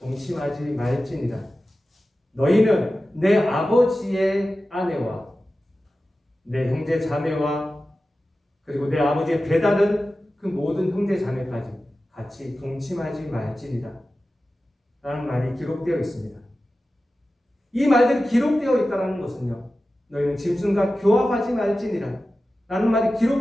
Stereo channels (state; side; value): normal; both; correlation 0.94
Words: 말지니라. 너희는 내 아버지의 아내와 내 형제 자매와 그리고 내 아버지의 배다른 그 모든 형제 자매까지 같이 동침하지 말지니라 라는 말이 기록되어 있습니다. 이 말들이 기록되어 있다는 것은요 너희는 짐승과 교합하지 말지니라 라는 말이